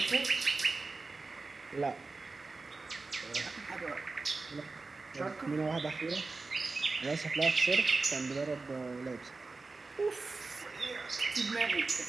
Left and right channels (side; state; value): left; quieter; 3.8 dB